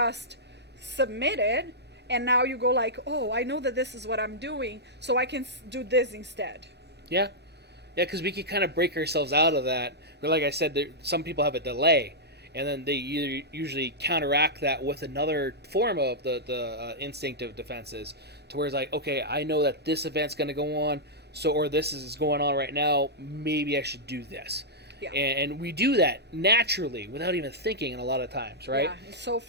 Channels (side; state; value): both; normal; correlation -0.10